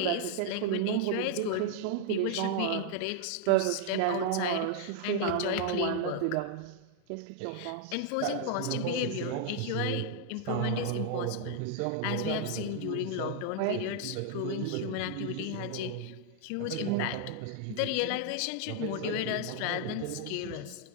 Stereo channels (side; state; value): both; different; correlation 0.00